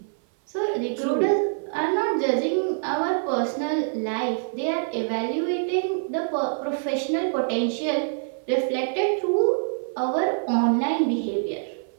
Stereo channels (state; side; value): silent; left; 56 dB below the other